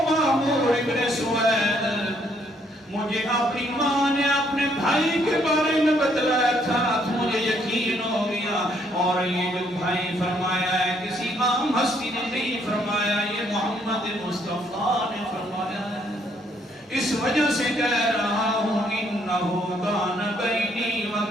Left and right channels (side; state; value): both; normal; correlation 0.69